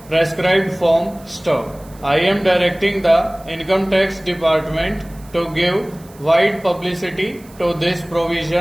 prescribed form stub. I am directing the Income Tax Department to give wide publicity to this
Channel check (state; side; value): noise; right; hiss, 25 dB below the sound